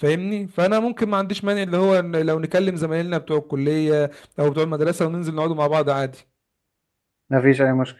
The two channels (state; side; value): identical; both; correlation 1.00